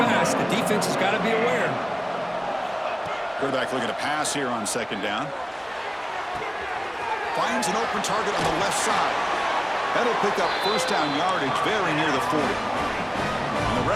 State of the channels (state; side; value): identical; both; correlation 1.00